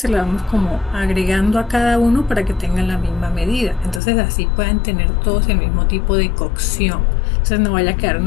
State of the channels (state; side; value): drops out; right; at 4.0 s